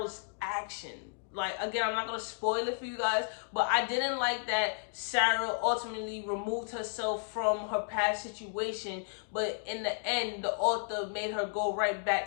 action. Like, again, I'm not gonna spoil it for you guys, but I didn't like that Sarah ultimately removed herself from her past situation, but in the end the author made her go right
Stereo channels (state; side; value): silent; right; digital silence